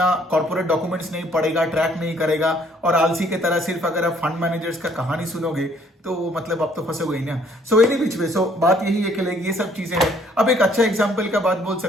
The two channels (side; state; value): both; normal; correlation 0.63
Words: कॉर्पोरेट डॉक्यूमेंट्स नहीं पढ़ेगा, ट्रैक नहीं करेगा, और आलसी की तरह सिर्फ अगर आप फंड मैनेजर्स का कहानी सुनोगे तो मतलब आप तो फंसोगे ही ना। सो एनी विच वे, सो बात यही है कि लाइक ये सब चीजें हैं। अब एक अच्छा एग्जांपल का बात बोल